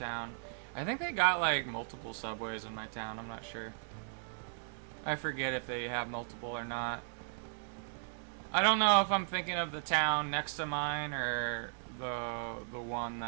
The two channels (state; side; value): silent; left; digital silence